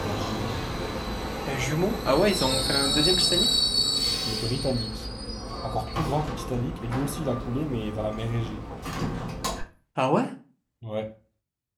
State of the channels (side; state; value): both; identical; correlation 1.00